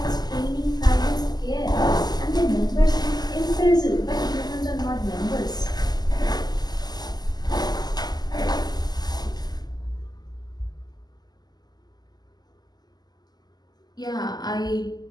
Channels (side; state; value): right; late; 0.20 ms